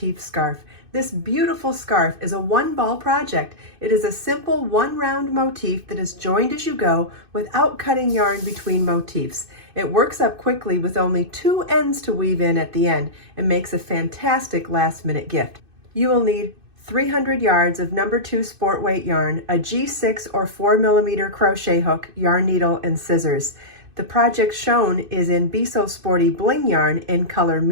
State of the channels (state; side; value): late; left; 2.6 ms